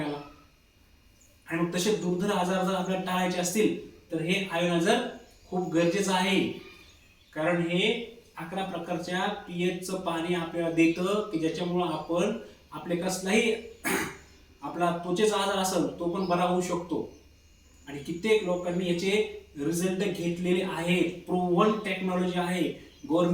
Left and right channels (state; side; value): identical; both; correlation 1.00